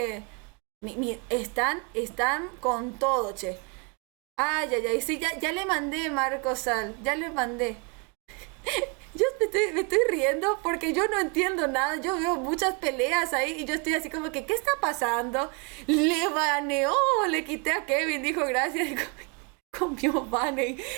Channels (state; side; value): quieter; left; 33.2 dB